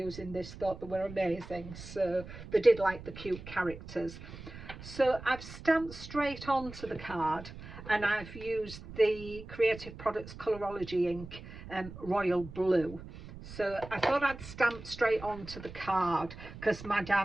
this thought they were amazing, so they did like the cute characters. So I've stamped straight onto the card, and I've used the Creative Products Colorology ink, Royal Blue. So I thought I'd stamp straight onto the card because my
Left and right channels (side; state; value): right; noise; rumble, 14 dB below the sound